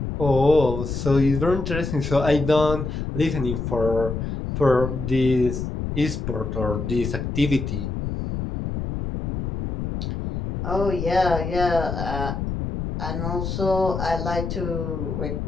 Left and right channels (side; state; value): left; noise; rumble, 4 dB below the sound